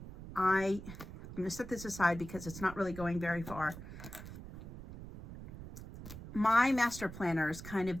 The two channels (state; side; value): noise; right; rumble, 12 dB below the sound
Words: going to set this aside because it's not really going very far. My master planner is kind